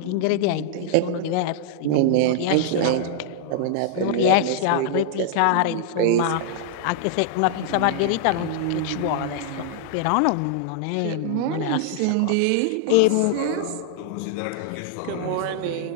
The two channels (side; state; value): both; different; correlation -0.01